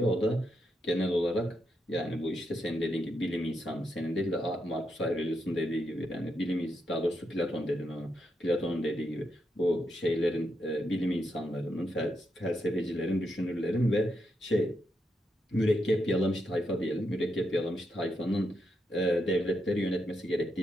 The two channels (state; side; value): normal; both; correlation 0.83